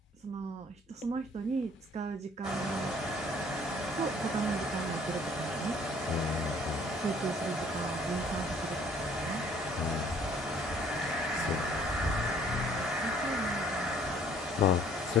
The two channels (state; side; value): normal; both; correlation 0.58